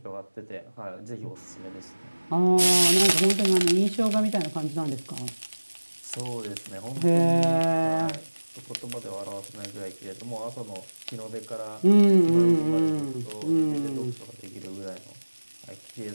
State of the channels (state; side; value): inverted; both; correlation -1.00